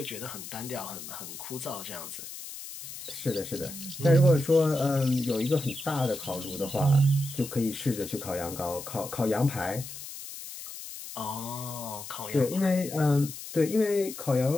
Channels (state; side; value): noise; left; hiss, 11 dB below the sound